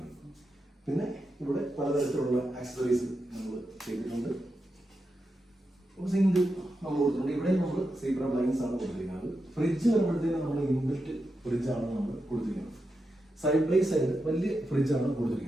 പിന്നെ ഇവിടെ പലതരത്തിലുള്ള ആക്സസറീസ് നമ്മൾ ചെയ്തിട്ടുണ്ട്. സിങ്ക് നമ്മൾ കൊടുത്തിട്ടുണ്ട്. ഇവിടെ നമ്മൾ സീബ്ര ബ്ലൈൻസ് ആണ് കൊടുത്തിരിക്കുന്നത്. ഫ്രിഡ്ജ് വരുമ്പോഴത്തേക്കും നമ്മൾ ഇൻബിൽറ്റ് ഫ്രിഡ്ജാണ് നമ്മൾ കൊടുത്തിരിക്കുന്നത്. സൈഡ് ബൈ സൈഡ് വലിയ ഫ്രിഡ്ജാണ്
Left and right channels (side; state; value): both; normal; correlation 0.88